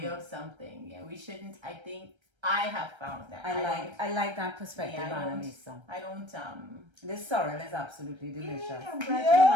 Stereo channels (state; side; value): late; left; 1.3 ms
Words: of something. Yeah, we shouldn't. I think I have found that. I like that perspective, Annalisa. I don't. This sorrel is absolutely delicious. Yeah, I'm glad you